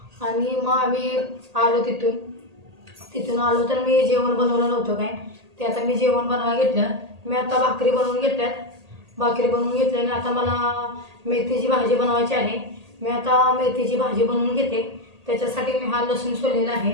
आणि मग आम्ही आलो. तिथून आलो तर मी जेवण बनवलं नव्हतं काय, ते आता मी जेवण बनवायला घेतलं. मी आता भाकरी बनवून घेतल्यात. भाकरी बनवून घेतल्याने आता मला मेथीची भाजी बनवायची आहे. मी आता मेथीची भाजी बनवून घेते. त्याच्यासाठी मी हा लसूण सोललेला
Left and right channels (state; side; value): late; left; 1.8 ms